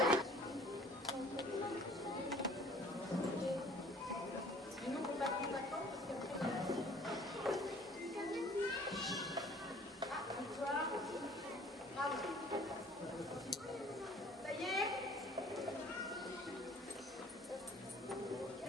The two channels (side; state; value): both; normal; correlation 0.52